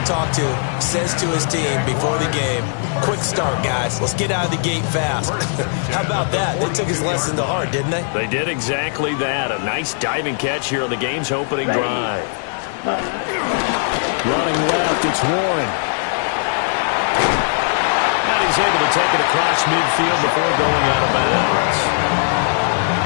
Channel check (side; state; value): right; silent; 67 dB below the other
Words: talk to says to his team before the game, quick start, guys. Let's get out of the gate fast. How about that? They took his lesson to heart, didn't they? They did exactly that. A nice diving catch here on the game's opening drive. Running left, it's Warren. And he's able to take it across midfield before going out of bounds.